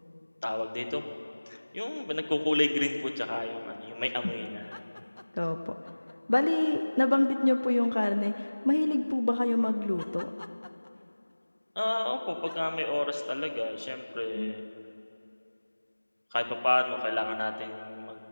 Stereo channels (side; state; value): both; inverted; correlation -1.00